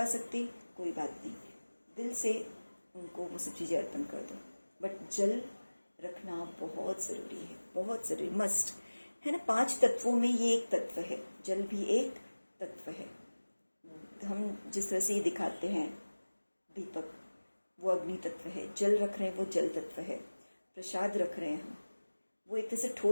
सकते कोई बात नहीं, दिल से उनको वो सब चीजें अर्पण कर दो। बट जल रखना बहुत जरूरी है, बहुत जरूरी, मस्ट है ना। 5 तत्वों में ये एक तत्व है, जल भी एक तत्व है। हम जिस तरह से ये दिखाते हैं दीपक, वो अग्नि तत्व है। जल रख रहे हैं, वो जल तत्व है। प्रसाद रख रहे हैं हम, वो एक तरह से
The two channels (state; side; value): inverted; both; correlation -1.00